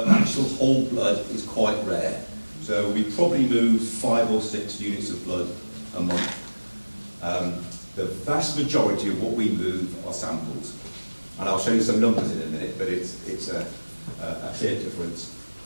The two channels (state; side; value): inverted; both; correlation -1.00